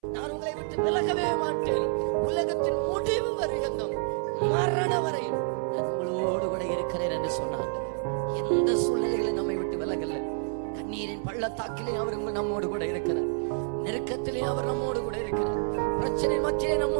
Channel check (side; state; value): left; silent; 59 dB below the other